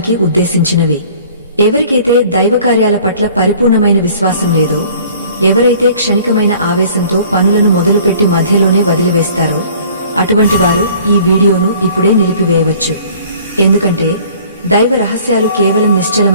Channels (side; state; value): both; inverted; correlation -0.51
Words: ఉద్దేశించినవి. ఎవరికైతే దైవకార్యాల పట్ల పరిపూర్ణమైన విశ్వాసం లేదో, ఎవరైతే క్షణికమైన ఆవేశంతో పనులను మొదలుపెట్టి మధ్యలోనే వదిలివేస్తారో, అటువంటి వారు ఈ వీడియోను ఇప్పుడే నిలిపివేయవచ్చు. ఎందుకంటే దైవ రహస్యాలు కేవలం